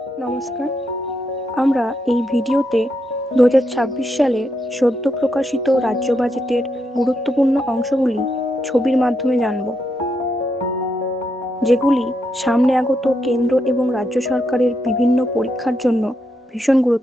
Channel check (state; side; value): normal; both; correlation 0.81